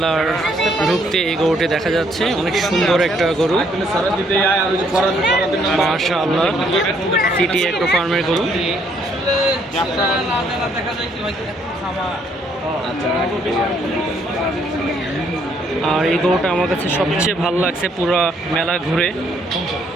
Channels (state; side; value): normal; both; correlation 0.68